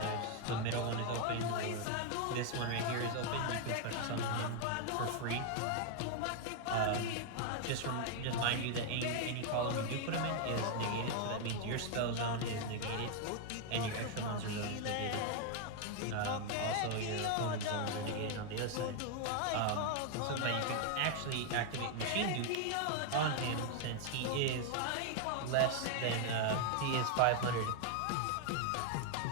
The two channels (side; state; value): both; different; correlation 0.00